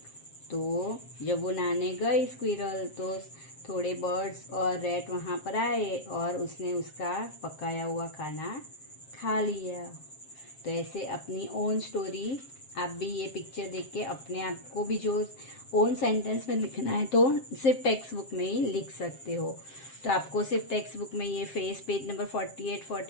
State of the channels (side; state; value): right; late; 7.5 ms